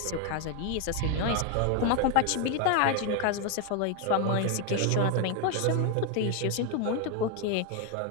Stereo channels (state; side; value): different; both; correlation 0.01